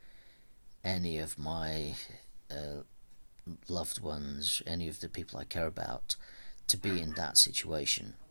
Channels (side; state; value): both; inverted; correlation -1.00